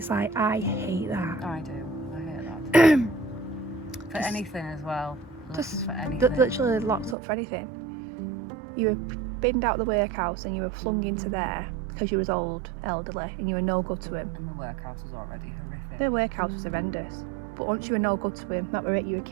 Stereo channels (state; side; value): drops out; left; at 7.2 s